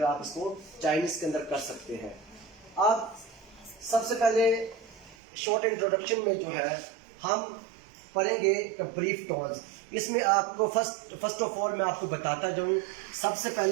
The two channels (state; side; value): drops out; left; at 5.2 s